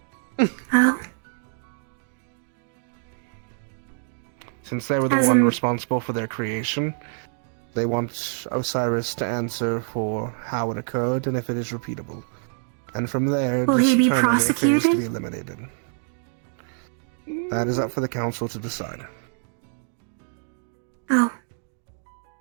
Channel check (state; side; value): silent; left; 61 dB below the other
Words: Oh. Since they were the As one in- responsible for their creation, they want Osiris to answer for how it occurred and if it is repeatable. And from there, Will he be determine if it is to prosecuted? be eliminated. That is up for the council to decide. Oh.